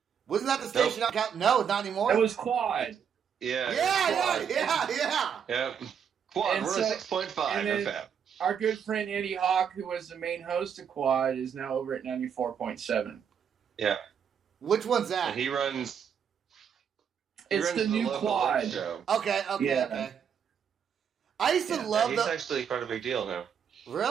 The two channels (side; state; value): left; quieter; 7.7 dB